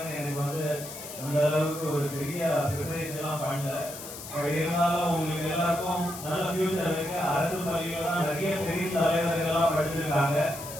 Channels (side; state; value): left; noise; hiss, 11 dB below the sound